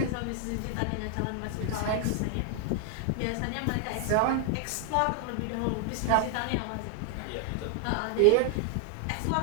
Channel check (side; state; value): both; different; correlation 0.00